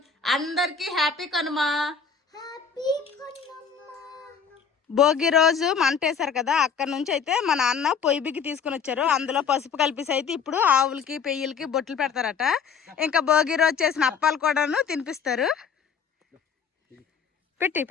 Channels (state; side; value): quieter; right; 6.4 dB